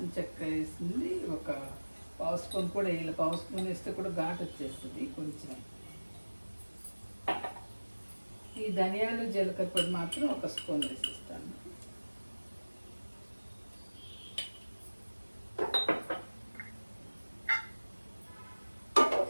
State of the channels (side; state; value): both; inverted; correlation -1.00